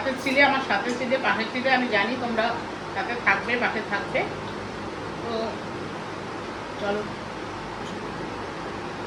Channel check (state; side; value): identical; both; correlation 1.00